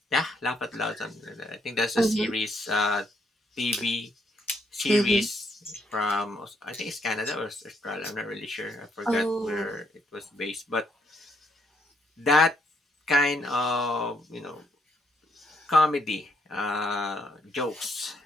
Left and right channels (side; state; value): both; normal; correlation 0.73